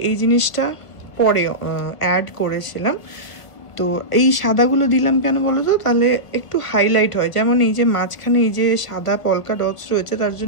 এই জিনিসটা পরে অ্যাড করেছিলাম। তো এই সাদাগুলো দিলাম কেন বলো তো, তাহলে একটু হাইলাইট হয়। যেমন এই যে মাঝখানে এই যে সাদা পলকা ডটস রয়েছে, তার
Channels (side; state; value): right; late; 1.5 ms